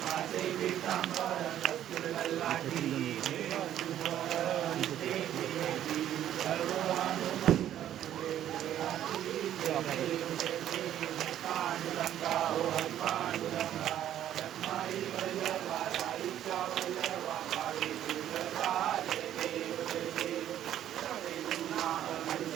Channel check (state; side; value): quieter; left; 11.4 dB